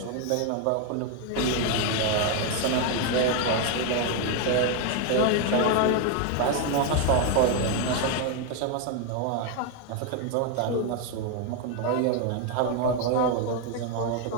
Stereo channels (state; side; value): different; both; correlation 0.01